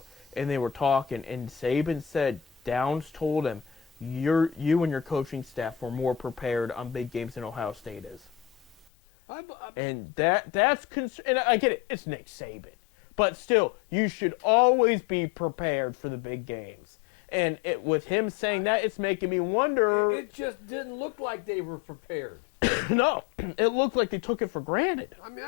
and they were talking. And Saban said Downs told him, you and your coaching staff were more prepared on big games than Ohio State is. And that's and I get it, it's Nick Saban. But still, you should always be prepared for the big games. And with him saying that, it's making me wonder. It just didn't look like they were prepared. No, it looked like they took it for granted. I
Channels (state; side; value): drops out; right; at 8.8 s